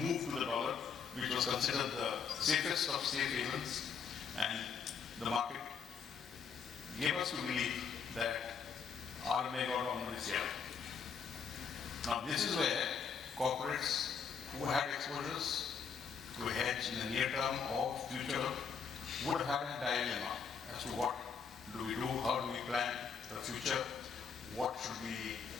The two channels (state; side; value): quieter; right; 6.3 dB